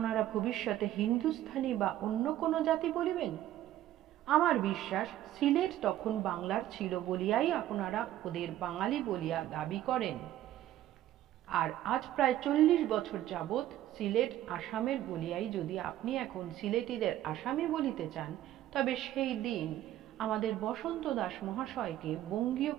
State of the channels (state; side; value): quieter; left; 13.2 dB